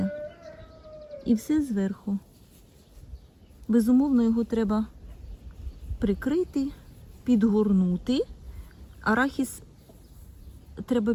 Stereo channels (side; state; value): both; identical; correlation 1.00